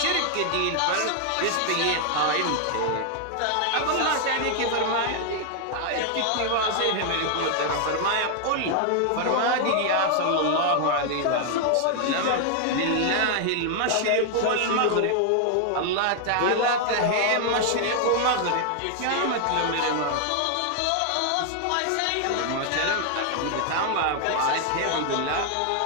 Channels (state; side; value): different; both; correlation 0.00